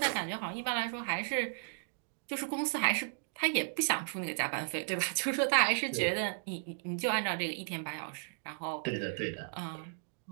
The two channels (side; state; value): left; silent; digital silence